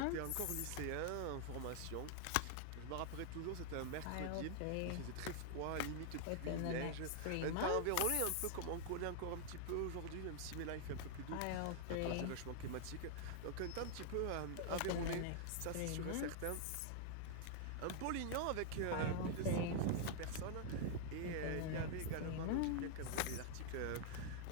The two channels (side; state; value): both; different; correlation 0.00